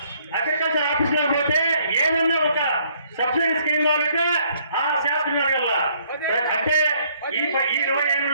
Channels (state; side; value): inverted; both; correlation -0.65